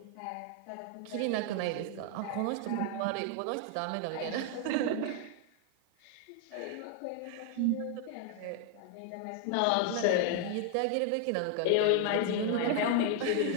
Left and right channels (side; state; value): both; different; correlation 0.00